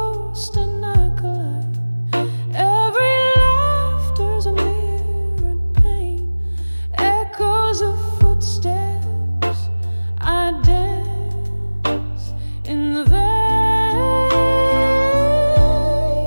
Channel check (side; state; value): both; inverted; correlation -1.00